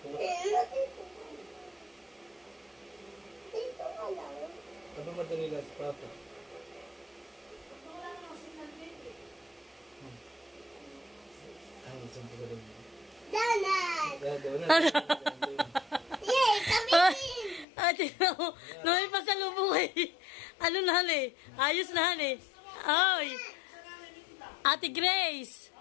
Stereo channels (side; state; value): right; drops out; at 17.7 s